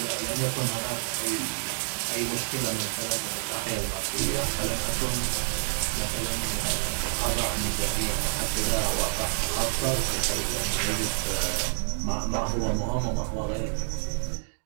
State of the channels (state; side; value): silent; left; digital silence